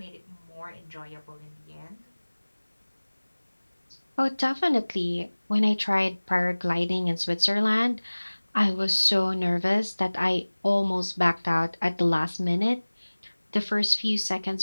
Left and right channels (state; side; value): inverted; both; correlation -1.00